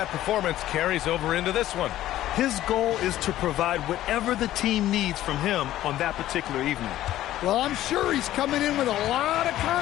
performance carries over into this one. His goal is to provide whatever the team needs from him on that particular evening. Well, I'm sure he's coming in with a lot of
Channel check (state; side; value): quieter; right; 13.8 dB